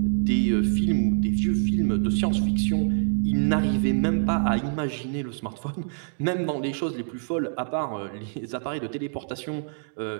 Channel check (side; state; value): left; silent; digital silence